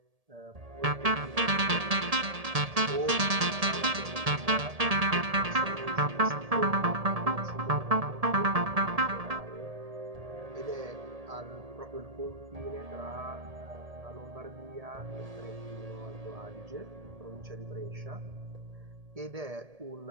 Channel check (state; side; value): late; left; 1.7 ms